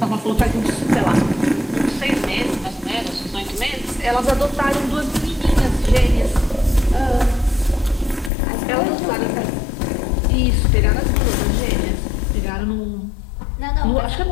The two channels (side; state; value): right; drops out; at 8.3 s